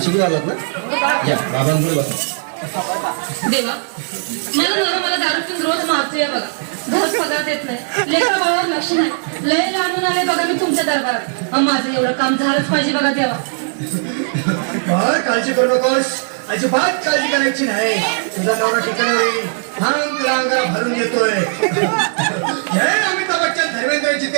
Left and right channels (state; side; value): silent; left; 63 dB below the other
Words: आलात ना? या बाबांपुढे बसा. देवा मला नवरा मला दारू पिऊन रोज मारतोय बघा. घर पगार देत नाही, लेखा बाळावर लक्ष नाही. लय लांबून आले बघा मी तुमच्या दरबारात. माझं एवढं काम झालंच पाहिजे बघा देवा. बाळ काळजी करू नकोस, अजिबात काळजी करायची नाही. तुझा नवरा ठिकाणी होईल. थांब तुला अंगाला भरून देतोय. जय अमिताभ बच्चन, धर्मेंद्र,